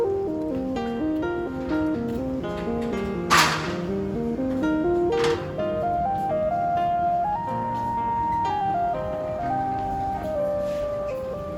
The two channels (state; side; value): identical; both; correlation 1.00